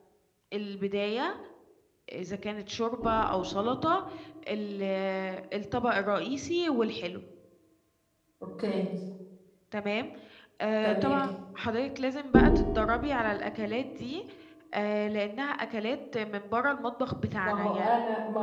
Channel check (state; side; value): identical; both; correlation 1.00